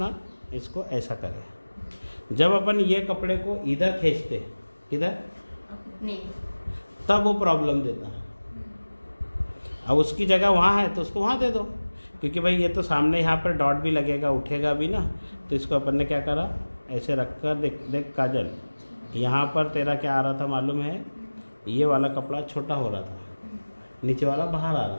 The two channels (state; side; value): inverted; both; correlation -1.00